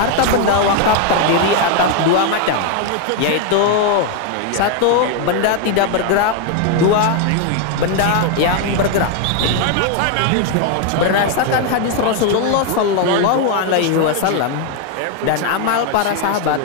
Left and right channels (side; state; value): both; different; correlation 0.01